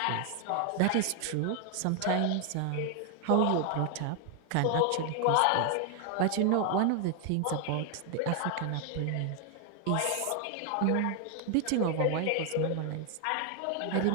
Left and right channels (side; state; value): both; different; correlation 0.00